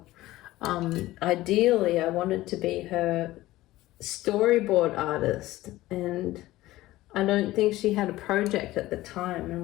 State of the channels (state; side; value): quieter; right; 16.9 dB